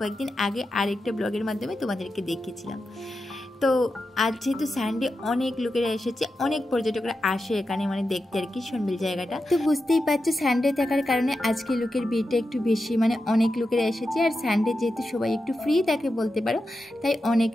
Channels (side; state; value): both; normal; correlation 0.90